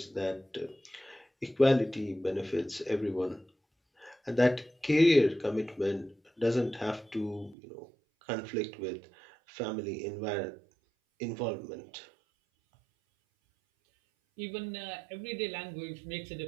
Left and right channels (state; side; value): drops out; left; at 7.6 s